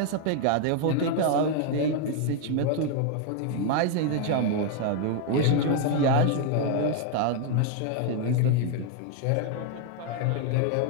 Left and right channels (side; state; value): both; different; correlation 0.00